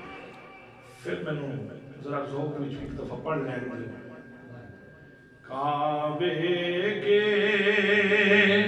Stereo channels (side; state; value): both; identical; correlation 1.00